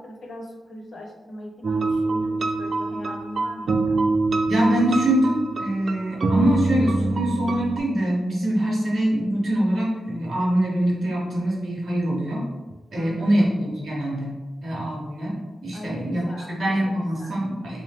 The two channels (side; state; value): both; normal; correlation 0.90